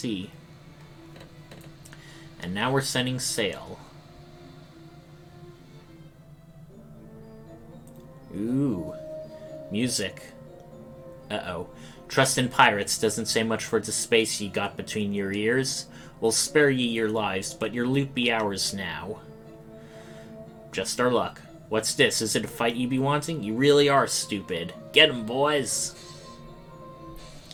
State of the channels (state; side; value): identical; both; correlation 1.00